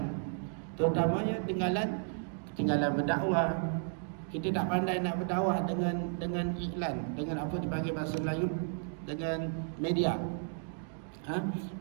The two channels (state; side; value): silent; left; 56 dB below the other